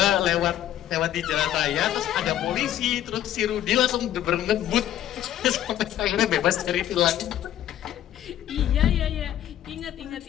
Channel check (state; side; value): quieter; right; 11.8 dB